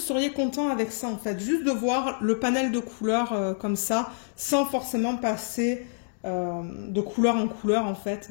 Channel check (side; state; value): right; silent; digital silence